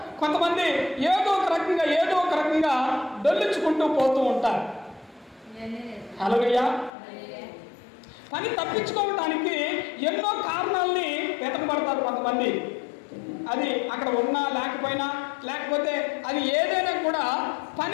కొంతమంది ఏదో ఒక రకంగా డొల్లించుకుంటూ పోతూ ఉంటారు. హల్లెలూయా. పని తప్పించుకోవటానికి ఎన్నో కారణాలని వెతకబడతారు కొంతమంది. అది అక్కడ ఉన్నా లేకపోయినా, లేకపోతే అది ఏదైనా కూడా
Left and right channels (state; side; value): drops out; right; at 6.9 s